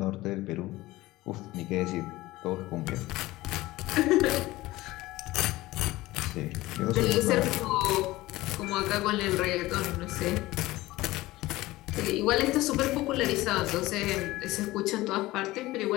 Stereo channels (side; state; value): right; quieter; 18.4 dB